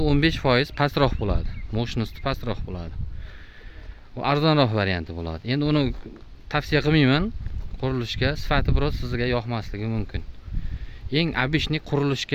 15% pastroq bo'ladi. Mощности pastroq bo'ladi. Bu arzonroq varianti bo'ladi. Endi uni tavsiya qilmayman. Qurilishga sifati biroz sizga yoqmasligi mumkin. Eng abishni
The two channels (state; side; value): identical; both; correlation 1.00